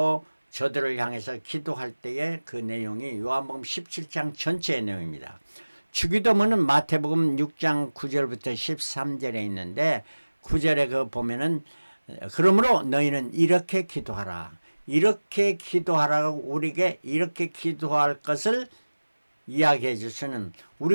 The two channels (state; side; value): inverted; both; correlation -1.00